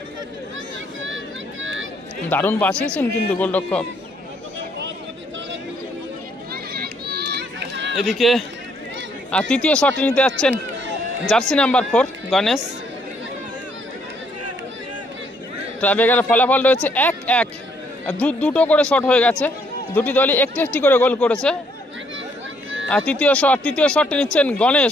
দারুণ বাঁচিয়েছেন কিন্তু গোলরক্ষক। এদিকে আর তৃতীয় শটটি নিতে যাচ্ছেন জার্সি নাম্বার 4 গণেশ। ট্রাইব্রেকারের ফলাফল রয়েছে 1-1। দুটো করে শট হয়ে গেছে, দুটি দলই একটি একটি করে গোল করেছে। আর তৃতীয় শটটি নিচ্ছেন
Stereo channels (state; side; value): normal; both; correlation 0.69